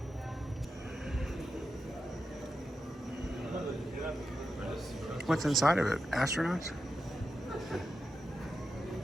What's inside of it? Astronauts?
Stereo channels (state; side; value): normal; both; correlation 0.89